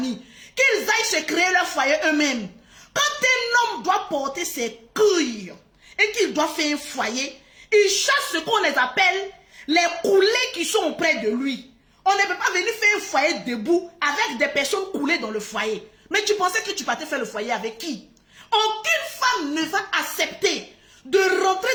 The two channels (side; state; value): both; identical; correlation 1.00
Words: Qu'ils aillent se créer leur foyer eux-mêmes. Quand un homme doit porter ses couilles et qu'il doit faire un foyer, il chasse ce qu'on les appelle les coulés qui sont auprès de lui. On ne peut pas venir faire un foyer debout avec des personnes coulées dans le foyer. Mais tu pensais que tu partais faire le foyer avec qui? Aucune femme ne va accepter de rentrer